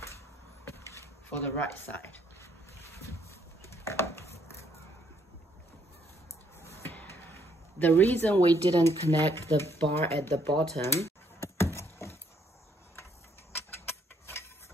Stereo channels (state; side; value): normal; both; correlation 0.69